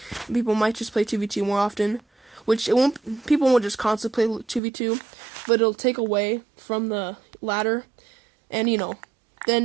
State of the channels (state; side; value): drops out; left; at 4.6 s